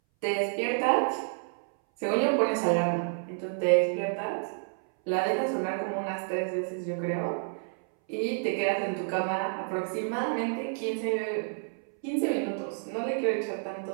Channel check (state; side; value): silent; left; 58 dB below the other